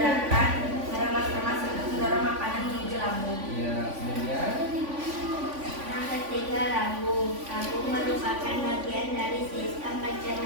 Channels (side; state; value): left; late; 3.5 ms